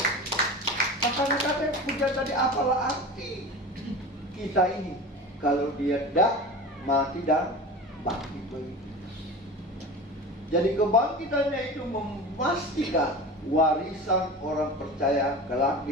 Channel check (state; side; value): normal; both; correlation 0.32